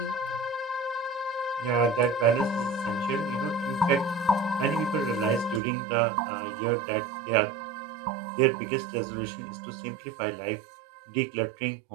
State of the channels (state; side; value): drops out; left; at 5.6 s